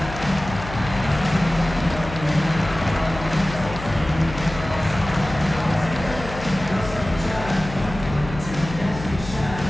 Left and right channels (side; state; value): left; noise; hum, 11 dB below the sound